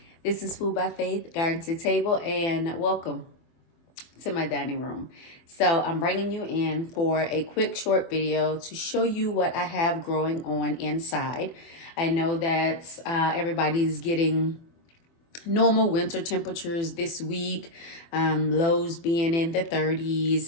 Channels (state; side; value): late; right; 24 ms